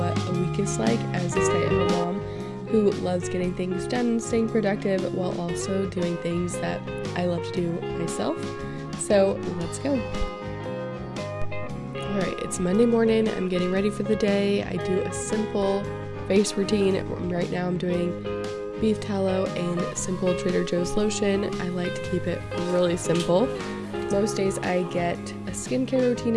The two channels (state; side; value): identical; both; correlation 1.00